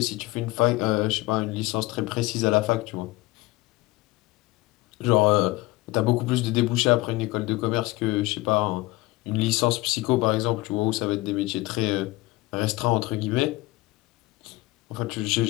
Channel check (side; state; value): right; quieter; 20.7 dB